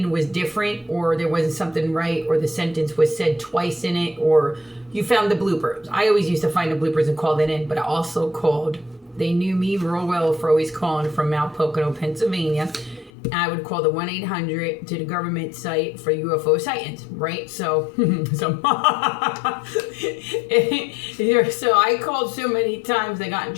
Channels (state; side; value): drops out; right; at 13.1 s